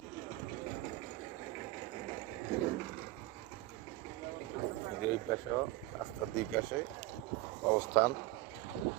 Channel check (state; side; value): quieter; left; 18.2 dB